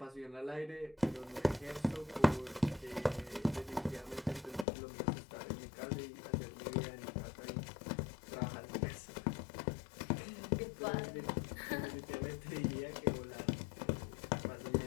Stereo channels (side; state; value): right; drops out; at 4.7 s